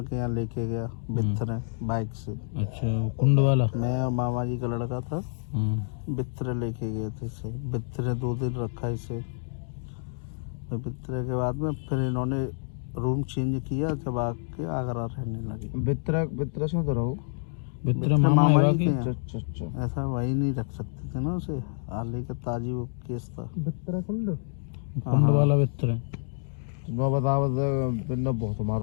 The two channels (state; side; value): silent; right; digital silence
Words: के यहाँ लेके गया बित्थरे बाइक से। अच्छा, कुंड वाला? मैं और मामा जी का लड़का था, बित्थरे लेके गए थे इसे। बित्थरे 2 दिन रखा इसे। फिर बित्थरे के बाद में फिर इन्होंने रूम चेंज किया, जब आके आगरा रहने लगे। बित्रा से तो रहो। बित्रा मामा है जी कि? के यहाँ। ऐसा वही नहीं रख सकते थे ना उसे, आले का ताजी वो केस था। बित्रा कुंड वाला बित्रा। मैं बताओ बिन्ना बहुत